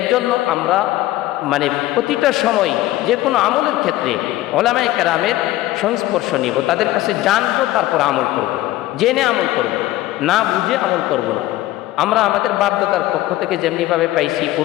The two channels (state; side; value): quieter; right; 16.1 dB